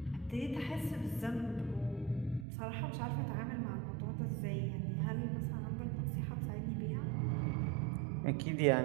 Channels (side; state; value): left; drops out; at 2.5 s